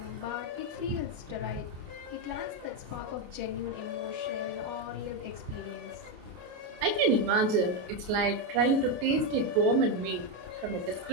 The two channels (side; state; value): left; late; 28 ms